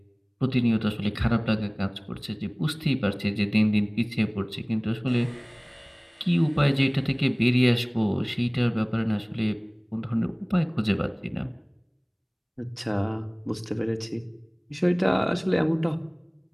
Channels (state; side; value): identical; both; correlation 1.00